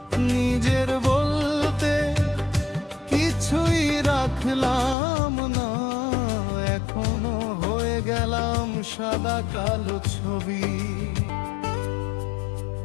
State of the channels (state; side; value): drops out; right; at 5.0 s